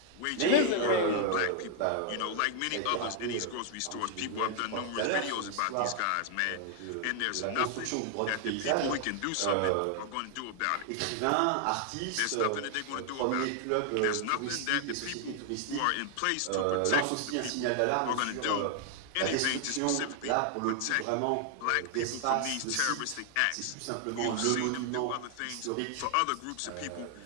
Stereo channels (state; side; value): different; both; correlation 0.00